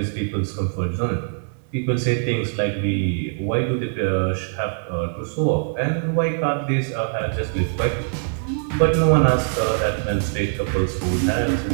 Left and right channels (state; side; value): silent; left; 56 dB below the other